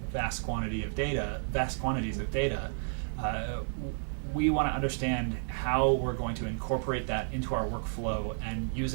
vast quantities of data. We want to understand how we're going to incorporate that into our workflow and use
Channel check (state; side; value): silent; left; 57 dB below the other